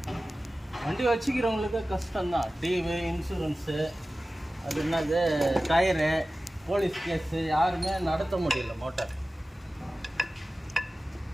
வண்டி வச்சுக்கிறவங்களுக்கு கஷ்டம்தான். டிவி, இன்சூரன்ஸு, அது என்னது டயரு, போலீஸ் கேஸு, யாருமே நடத்த முடியல மோட்டார்.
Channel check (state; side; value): normal; both; correlation 0.96